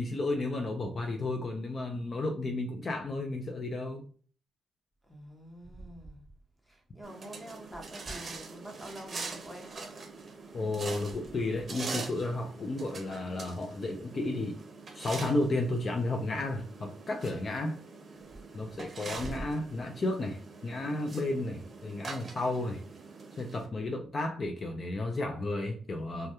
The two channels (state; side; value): normal; both; correlation 0.81